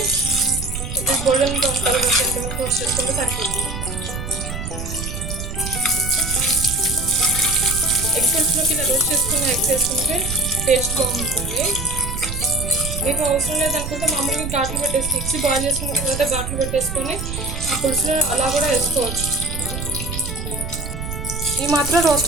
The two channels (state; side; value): noise; right; rumble, 6 dB below the sound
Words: కొద్దిగా గోల్డెన్ బ్రౌన్ కలర్ వచ్చేంతవరకు రోస్ట్ చేసుకుంటే సరిపోతుంది. ఎగ్ పులుసులోకి ఇలా రోస్ట్ చేసుకున్న ఎగ్స్ వేసుకుంటే టేస్ట్ బాగుంటుంది. మీకు అవసరం లేదనుకుంటే మామూలుగా ఘాట్లు పెట్టేసి ఎగ్స్ బాయిల్ చేసుకున్న తర్వాత ఘాట్లు పెట్టేసుకొని ఆ పులుసులో అలా కూడా వేసుకోవచ్చు. ఈ మాత్రం